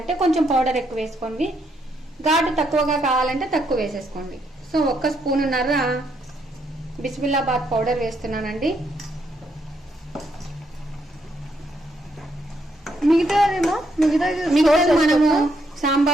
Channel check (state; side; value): normal; both; correlation 0.75